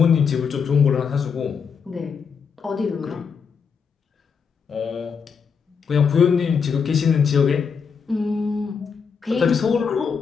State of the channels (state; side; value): quieter; right; 6.1 dB